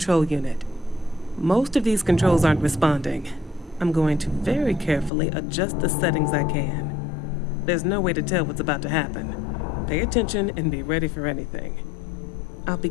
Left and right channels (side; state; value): right; drops out; at 5.1 s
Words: unit. Most of these controls aren't responding. I'm going to very carefully adjust the settings I can. There's no way to tell what's about to happen. Pay attention and be ready for anything. I'll